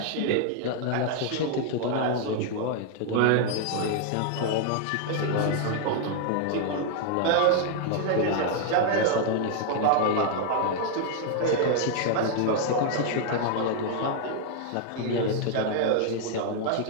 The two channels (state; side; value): different; both; correlation 0.00